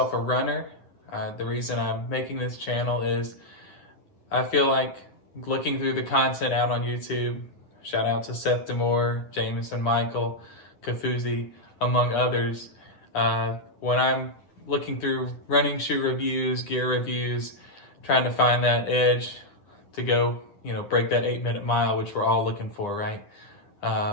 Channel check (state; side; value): late; right; 9.9 ms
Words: a runner. The reason I'm making this channel is I feel like looking through the content out on YouTube, shout out to Seth Demore, Jameson Michael, Kafuzi, among others, when I'm looking through running shoe reviews, gear reviews, trying to find that edge to go, break that 8-minute mile, which we're all looking for, right?